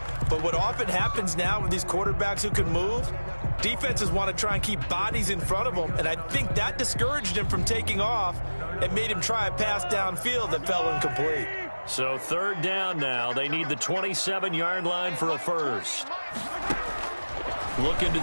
But what often happens now with these quarterbacks who can move, defenses want to try and keep bodies in front of them, and I think that discouraged him from taking off and made him try a pass downfield that fell incomplete. So 3rd down now. They need the 27-yard line for a first. Looking to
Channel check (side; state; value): both; inverted; correlation -1.00